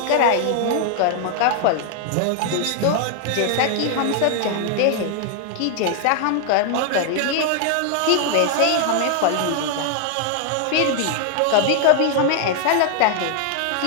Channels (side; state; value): both; different; correlation 0.00